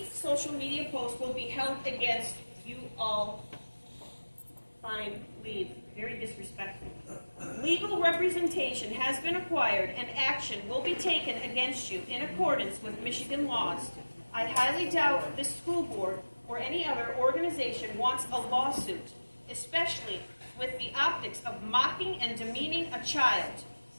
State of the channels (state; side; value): inverted; both; correlation -1.00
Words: social media post will be held against you all. Fine, leave. Very disrespectful. Legal representation has been acquired and action will be taken against you in accordance with Michigan laws. I highly doubt this school board or any other organization wants a lawsuit, especially with the optics of mocking and demeaning a child